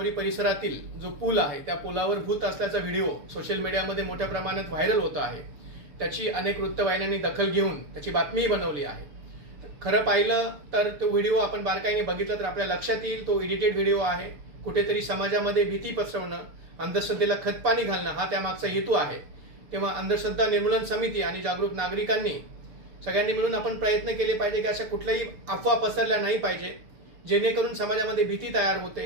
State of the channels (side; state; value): left; late; 6.9 ms